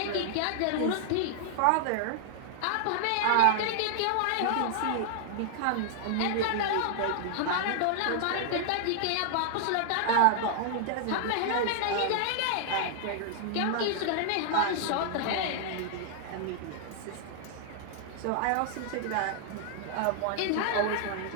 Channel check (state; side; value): different; both; correlation 0.00